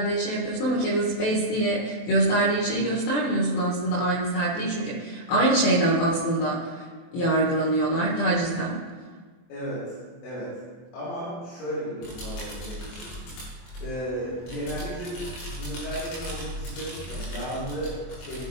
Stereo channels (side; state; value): right; late; 23 ms